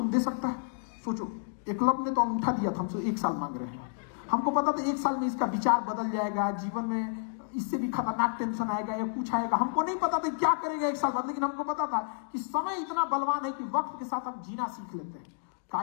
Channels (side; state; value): right; silent; digital silence